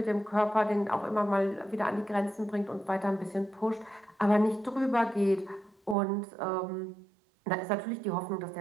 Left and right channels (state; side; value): drops out; left; at 6.0 s